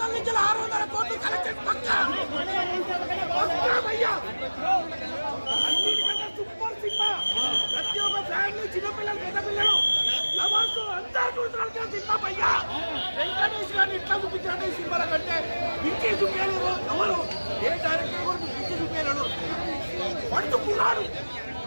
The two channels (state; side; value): inverted; both; correlation -1.00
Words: నుంచి 600 కోట్లు కలెక్షన్ పక్కా. అన్నిటికంటే సూపర్ సినిమా. ప్రతి ఒక్క ఫ్యామిలీ, చిన్నపిల్లలు, పెద్ద పిల్లలు, లవర్స్ అందరూ చూడాల్సిన సినిమా భయ్యా. వెంకటేష్ గారిని ఇట్లా చూపించాడు ఈ సినిమాల కంటే పిచ్చి చూపించలేరు ఎవరు. ఏ డైరెక్టర్ కూడా పిచ్చి చూపించలేడు. పడుతున్నాడు